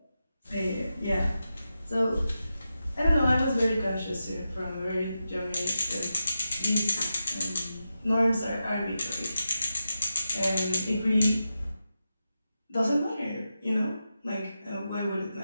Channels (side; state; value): both; inverted; correlation -0.90